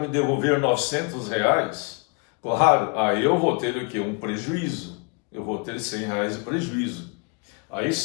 devolver R$ 900, claro, aí eu vou ter o quê? Um prejuízo. Eu vou ter R$ 100 de prejuízo. Aí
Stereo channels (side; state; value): right; quieter; 33.9 dB